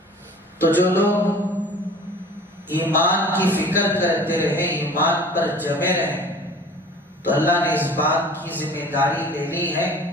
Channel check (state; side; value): normal; both; correlation 0.45